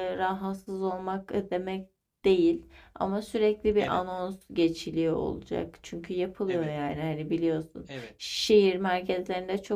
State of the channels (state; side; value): identical; both; correlation 1.00